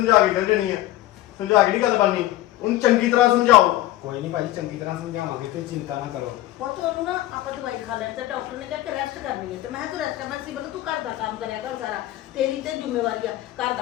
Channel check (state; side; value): quieter; right; 15.4 dB